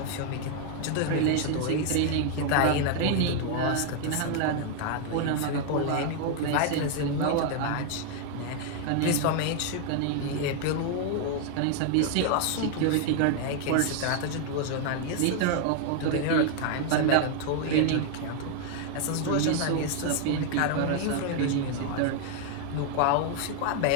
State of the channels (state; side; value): different; both; correlation 0.00